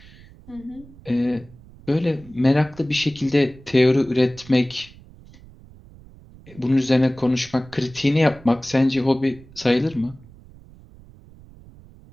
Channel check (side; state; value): right; noise; rumble, 22 dB below the sound